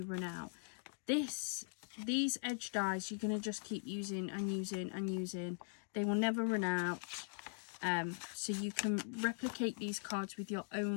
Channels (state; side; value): silent; right; digital silence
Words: run out. These edge dies you're going to just keep using and using and using. They will never run out. So you can replicate these cards with your